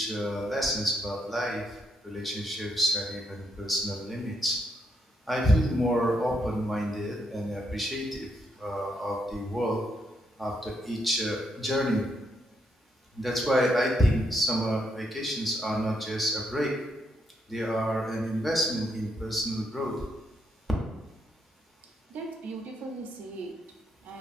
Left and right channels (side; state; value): both; normal; correlation 0.77